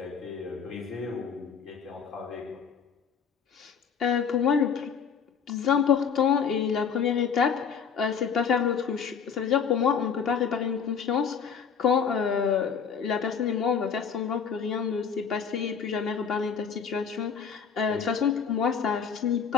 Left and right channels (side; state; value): right; quieter; 6.8 dB